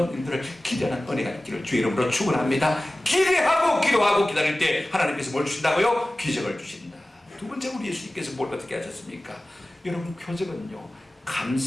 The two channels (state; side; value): normal; both; correlation 0.97